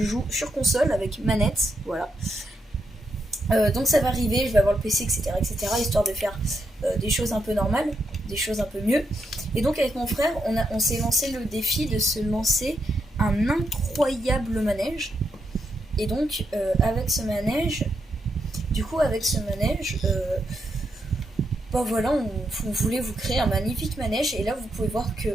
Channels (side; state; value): both; normal; correlation 0.82